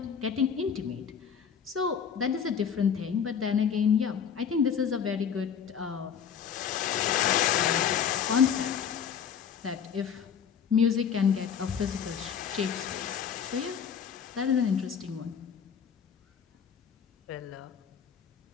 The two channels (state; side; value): quieter; right; 7.5 dB